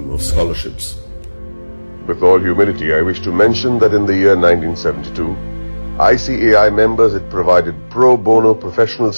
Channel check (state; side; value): inverted; both; correlation -1.00